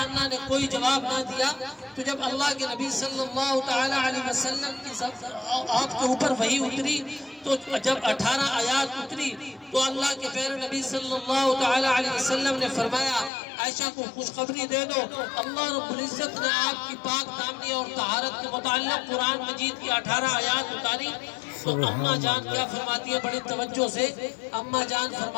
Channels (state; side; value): drops out; right; at 13.3 s